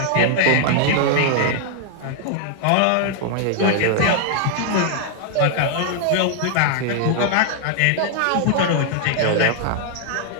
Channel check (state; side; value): different; both; correlation 0.00